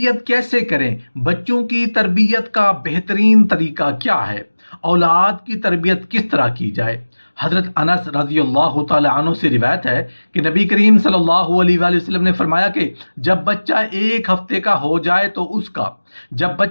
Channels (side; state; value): both; inverted; correlation -1.00